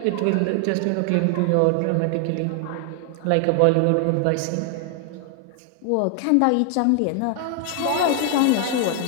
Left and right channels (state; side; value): different; both; correlation 0.00